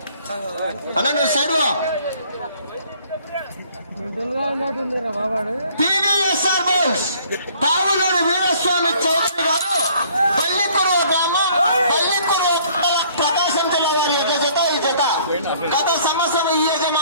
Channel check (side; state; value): both; inverted; correlation -0.58